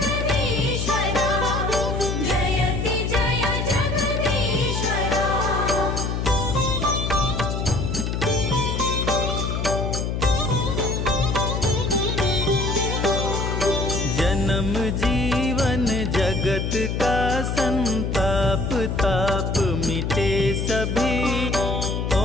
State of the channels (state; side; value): noise; left; hum, 1 dB below the sound